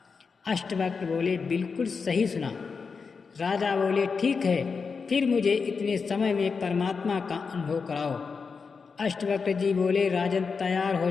अष्टवक्र बोले, बिल्कुल सही सुना। राजा बोले, ठीक है, फिर मुझे इतने समय में परमात्मा का अनुभव कराओ। अष्टवक्र जी बोले, राजन तैयार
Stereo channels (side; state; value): right; quieter; 5.2 dB